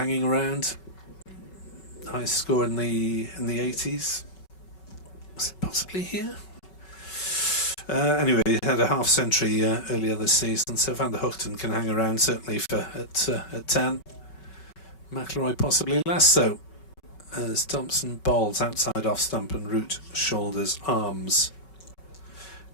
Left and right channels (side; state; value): right; late; 5.3 ms